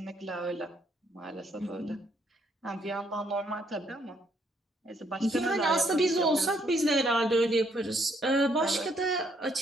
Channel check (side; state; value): both; normal; correlation 0.70